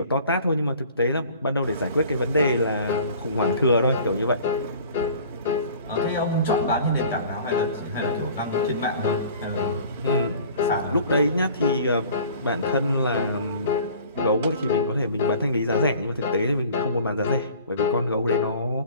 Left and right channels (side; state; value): both; inverted; correlation -0.47